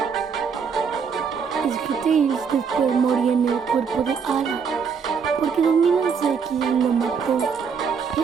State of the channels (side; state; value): left; quieter; 6.2 dB